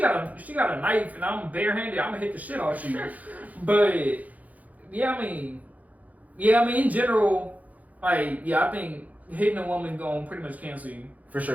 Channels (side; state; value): left; late; 0.076 ms